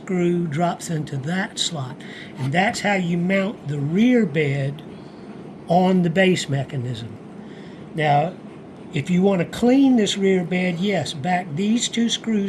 drops into that slot. And that's how you mount the rear bed on the base mechanism. Now, if you want to clean this rear bed, yes, back these 2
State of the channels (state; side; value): identical; both; correlation 1.00